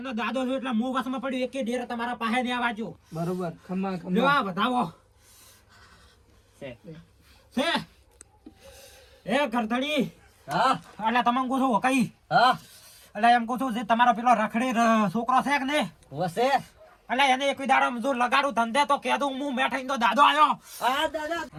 દાદો છું એટલે હું વસમાં પડ્યું એક ડેરો તમારા પાસે ને આવાજો બરોબર ખમ્મા લ્યો ખમ્મા આ બતાવો છે છે એ ઘરધણી હા એટલે તમે કહું છું કઈ હા એટલે એમ કહું છું જે તમારો પેલો રખડી છોકરો છે કે ને વસે એટલે એને એક દાડો જો લગાડું ધંધે તો કહેતું હું મેઠાઈ તો દાદો આવ્યો હા દાદા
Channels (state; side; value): identical; both; correlation 1.00